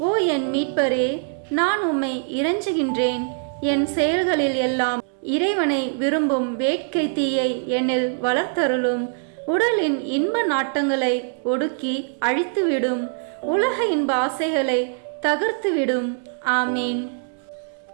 ஓ என் மீட்பரே, நான் உம்மை இறைஞ்சுகின்றேன். என் செயல்களில் எல்லாம் இறைவனை விரும்பும் வேட்கை தீயை என்னில் வளர்த்தருளும். உடலின் இன்ப நாட்டங்களை ஒடுக்கி அழித்துவிடும். உலக இன்ப ஆசைகளை தகர்த்துவிடும். ஆமீன்.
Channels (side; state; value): left; silent; digital silence